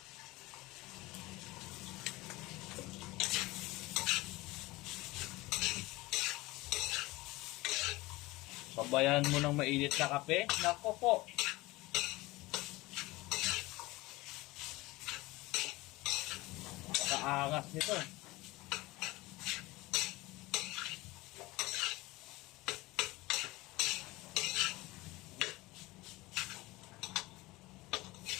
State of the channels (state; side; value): quieter; right; 20.7 dB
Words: Sabayan mo ng mainit na kape. Nako po. Kaangas nito.